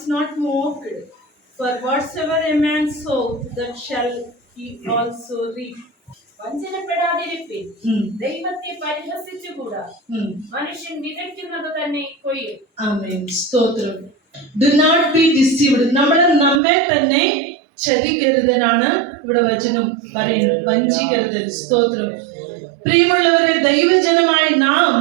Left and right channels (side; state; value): left; drops out; at 16.6 s